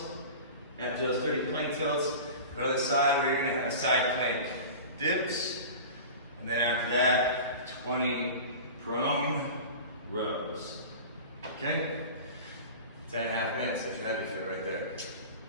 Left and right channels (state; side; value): inverted; both; correlation -0.35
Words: After those 30 plank tilts, go to the side where you're going to have side plank dips. And then after that, 20 prone rows. Okay? 10.5 minutes, that's your heavy fit right there.